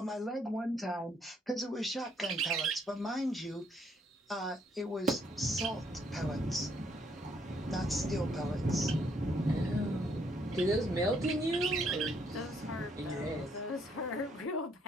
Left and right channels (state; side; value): normal; both; correlation 0.70